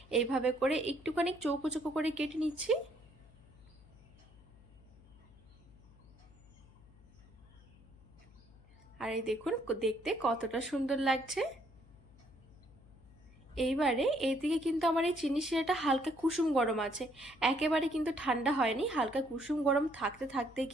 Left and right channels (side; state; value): left; noise; hum, 24 dB below the sound